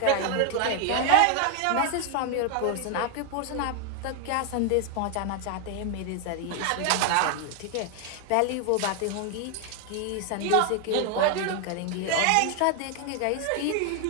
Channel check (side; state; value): both; different; correlation 0.00